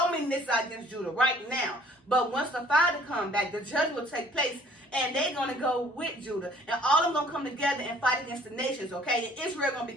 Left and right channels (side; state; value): both; normal; correlation 0.55